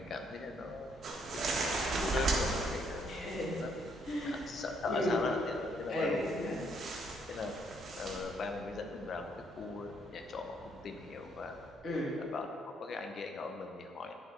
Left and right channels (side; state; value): both; normal; correlation 0.70